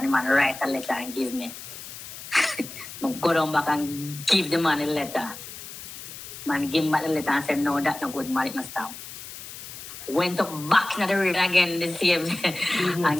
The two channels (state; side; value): noise; left; hiss, 12 dB below the sound